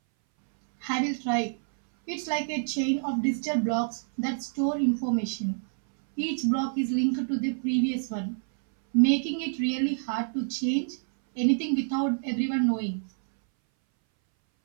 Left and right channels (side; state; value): left; silent; 60 dB below the other